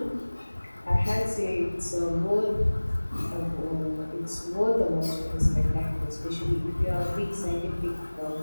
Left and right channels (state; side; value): inverted; both; correlation -1.00